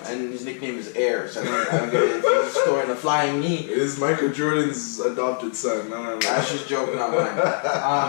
And his nickname is Air, so I don't get it. If he's scoring a flying knee. It is Michael Jordan's adopted son. No. That's just joke, not mine.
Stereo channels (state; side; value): silent; right; digital silence